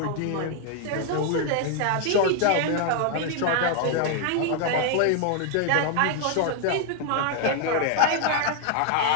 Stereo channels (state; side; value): different; both; correlation 0.00